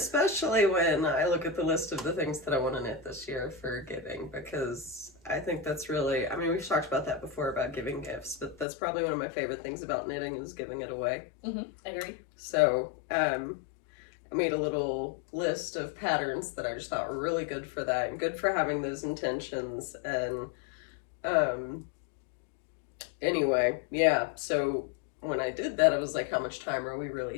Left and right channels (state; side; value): drops out; right; at 8.7 s